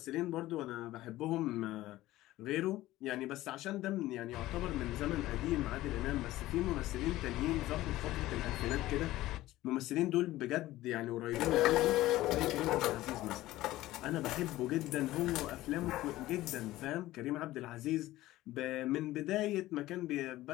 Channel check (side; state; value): right; quieter; 16.4 dB